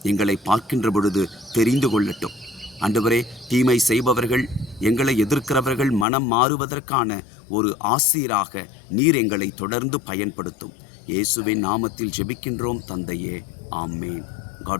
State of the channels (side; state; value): right; drops out; at 6.1 s